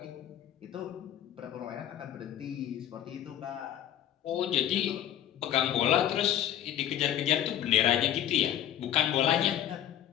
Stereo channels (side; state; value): right; quieter; 11.2 dB